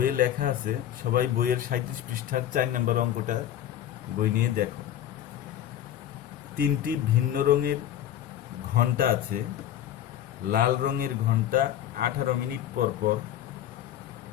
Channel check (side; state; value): right; quieter; 11.2 dB